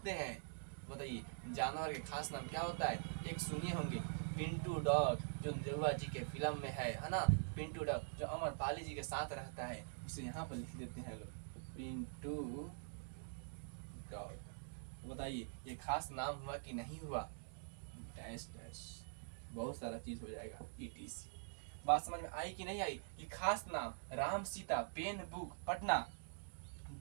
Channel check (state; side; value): silent; left; digital silence